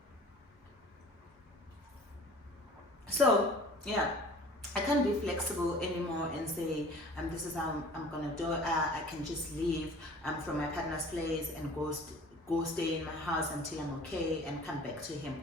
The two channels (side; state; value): both; normal; correlation 0.46